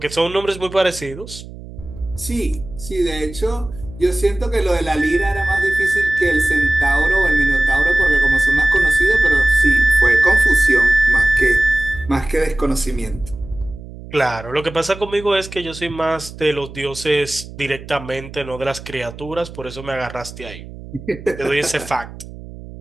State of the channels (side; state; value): right; noise; hum, 15 dB below the sound